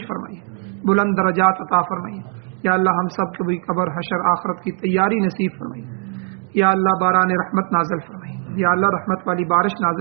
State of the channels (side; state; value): left; quieter; 38.7 dB